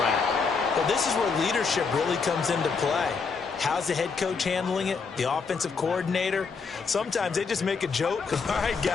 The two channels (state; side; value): quieter; right; 5.1 dB